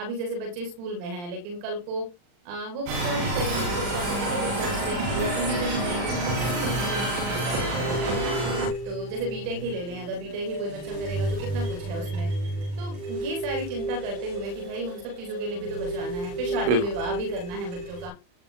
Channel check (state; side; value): late; left; 40 ms